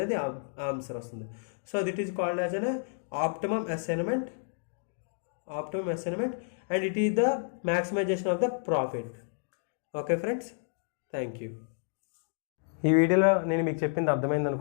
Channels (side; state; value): right; silent; digital silence